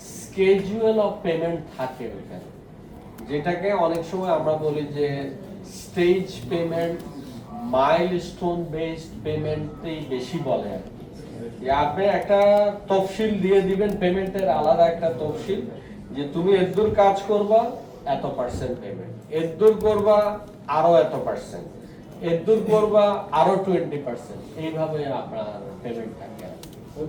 স্কেজুয়াল অফ পেমেন্ট থাকে ওখানে, যেটাকে অনেক সময় আমরা বলি যে স্টেজ পেমেন্ট, মাইলস্টোন বেসড পেমেন্টই বেশি বলে আর কি। যে আপনি একটা তফসিল দিয়ে দিবেন, পেমেন্টের আলাদা একটা তফসিল, যে তুমি এতদূর কাজ করবা এত পার্সেন্ট পেমেন্ট, এতদূর করবা আরো এত পার্সেন্ট, এতদূর করবা আরো 20%, এইভাবে আপনার পেমেন্ট থাকে।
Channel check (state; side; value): identical; both; correlation 1.00